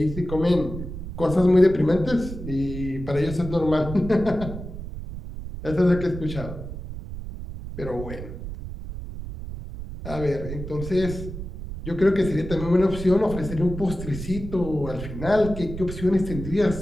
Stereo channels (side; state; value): right; noise; rumble, 9 dB below the sound